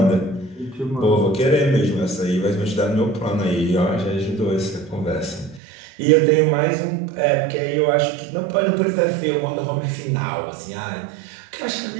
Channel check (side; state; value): left; drops out; at 5.6 s